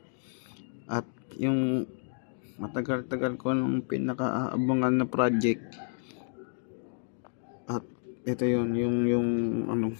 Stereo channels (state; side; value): silent; right; digital silence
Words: At yung matagal-tagal ko nung pinakaabangan na project. At ito yung ano,